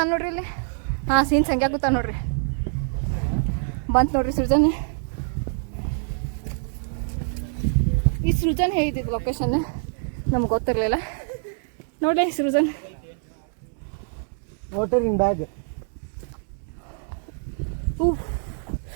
ನೋಡ್ರಿ ಇಲ್ಲಿ. ಸೀನ್ ಸಂಖ್ಯೆ ಕೂತ ನೋಡ್ರಿ. ಬಂತು ನೋಡ್ರಿ ಸೃಜನ್. ಈ ಸೃಜನ್ ಹೇಳಿದ್ದು ಲೊಕೇಶನ್ ನಮ್ಗೆ ಗೊತ್ತಿರಲಿಲ್ಲ. ನೋಡ್ರಿ ಸೃಜನ್. Water in bag.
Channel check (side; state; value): left; silent; digital silence